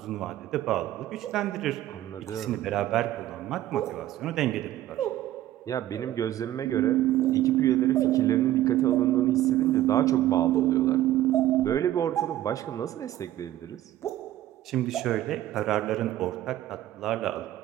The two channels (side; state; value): left; quieter; 13.7 dB